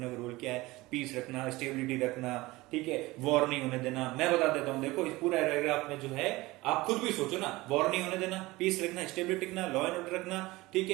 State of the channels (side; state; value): left; quieter; 20.3 dB